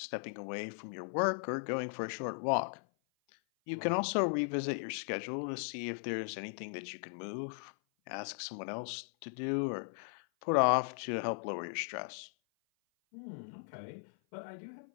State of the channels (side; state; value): right; silent; 53 dB below the other